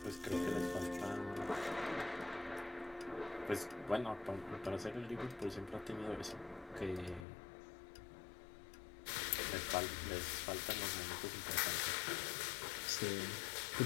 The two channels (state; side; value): drops out; right; at 7.2 s